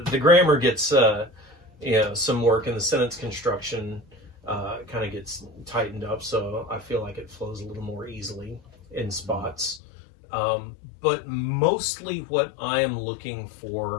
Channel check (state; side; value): drops out; right; at 9.8 s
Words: grammar gets you know, some work, and the sentence construction kind of gets tightened up, so I feel like it flows a little more easily in spots. But mostly what I am looking